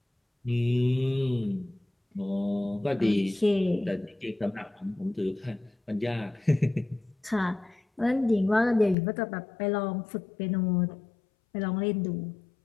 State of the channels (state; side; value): drops out; right; at 9.0 s